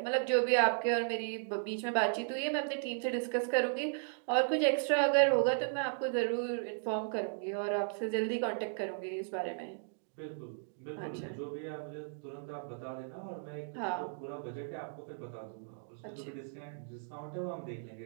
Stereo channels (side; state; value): left; silent; digital silence